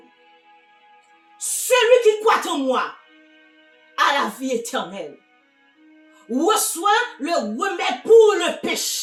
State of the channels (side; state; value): both; identical; correlation 1.00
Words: Celui qui croit en moi a la vie éternelle, reçoit le remède pour le